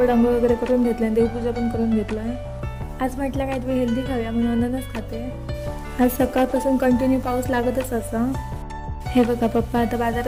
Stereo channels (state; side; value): identical; both; correlation 1.00